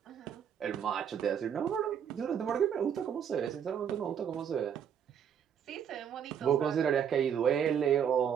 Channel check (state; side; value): quieter; left; 8.3 dB